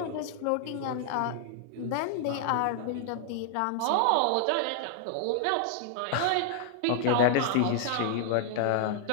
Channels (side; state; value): both; different; correlation -0.01